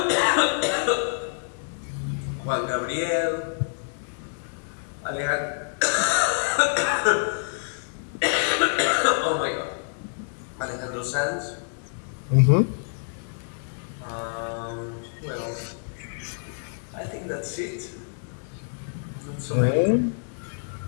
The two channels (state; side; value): silent; right; digital silence